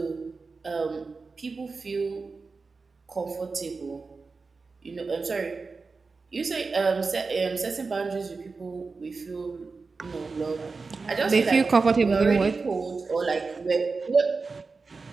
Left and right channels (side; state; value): left; quieter; 4.3 dB